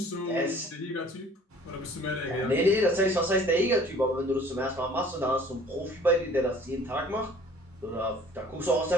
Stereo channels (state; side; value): normal; both; correlation 0.51